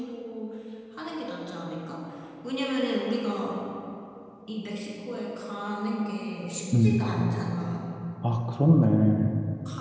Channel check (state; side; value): identical; both; correlation 1.00